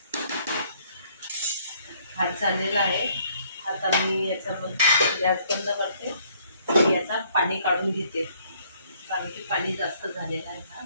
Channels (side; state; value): both; inverted; correlation -0.64